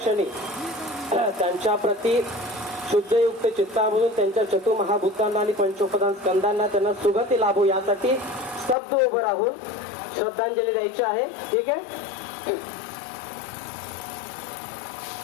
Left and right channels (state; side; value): drops out; right; at 8.8 s